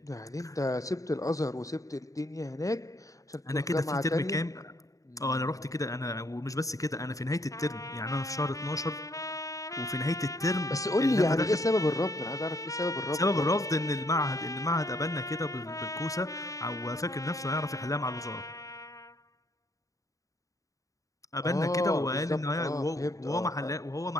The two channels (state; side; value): late; right; 0.16 ms